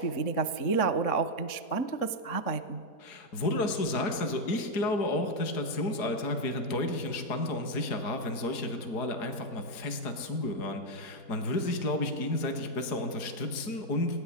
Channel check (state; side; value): late; right; 4.8 ms